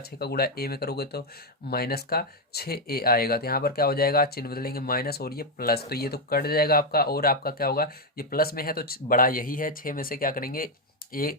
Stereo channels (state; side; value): normal; both; correlation 0.04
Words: का गुणा ए में करोगे तो माइनस का 6a आएगा, तो यहाँ पर क्या हो जाएगा, चिन्ह बदलेंगे माइनस और ये प्लस, तो ये तो कट जाएगा आपका और आपका क्या होगा, ये प्लस में है तो बड़ा यही है, 6 में से क्या करेंगे